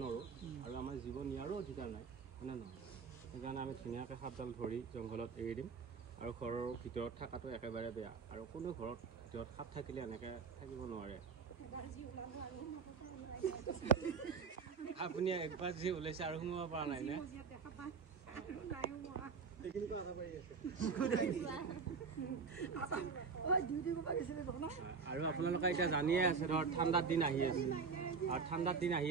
নোৱাৰোঁ আৰু আমাৰ জীৱ নিয়াৰো অধিকাৰ নাই হয়নে নহয় সেইকাৰণে আমি ধুনীয়াকৈ সাপডাল ধৰি জংঘলত এৰি দিম আৰু ঘৰৰ ভিতৰত থকাটো একেবাৰে বেয়া আৰু কোনো ঘৰত ভিতৰত সাপ থাকিলে এনেকৈ থাকিব নোৱাৰে আপুনি একবাৰ যি ওলাইছে আৰু সোমাব পৰা নাই নে আৰু আপোনালোকে এতিয়া জানিয়ে আছে ধৰ ঠাণ্ডাৰ দিন আহি আছে আৰু ঠাণ্ডাৰ দিন আহি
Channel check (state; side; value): quieter; left; 5.4 dB